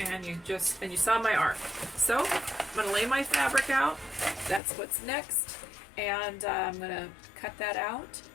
you saw my arm. So I'm going to lay my fabric out. That's what's next. And I'm going to cut that out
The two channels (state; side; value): drops out; right; at 4.6 s